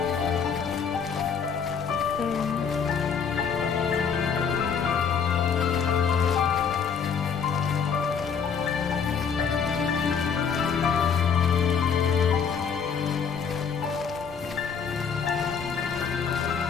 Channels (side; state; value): right; quieter; 6.5 dB